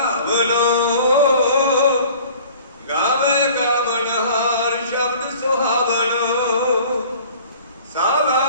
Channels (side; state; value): both; inverted; correlation -0.48